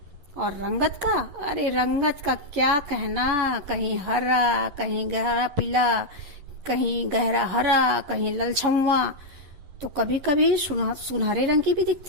और रंगत का, अरे रंगत का क्या कहना, कहीं हरा, कहीं गहरा पीला, कहीं गहरा हरा, कहीं ललछम्वा, तो कभी कभी सुनहरे रंग की भी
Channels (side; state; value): left; late; 11 ms